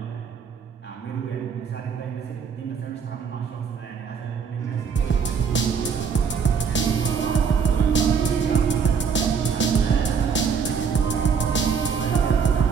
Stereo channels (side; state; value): left; quieter; 6.4 dB